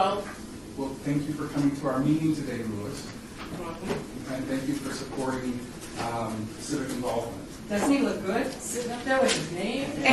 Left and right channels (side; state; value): both; identical; correlation 1.00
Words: Well, thank you for coming to our meeting today, Louis. And thank you for supporting civic involvement. Doesn't he look good sitting up there with his name?